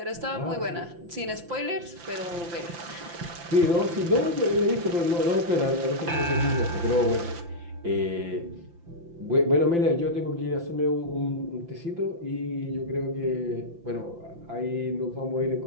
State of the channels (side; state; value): left; late; 5.8 ms